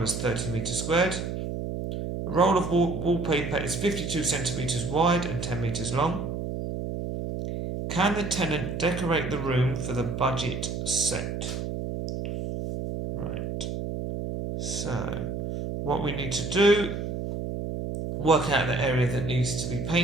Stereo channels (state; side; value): noise; right; hum, 4 dB below the sound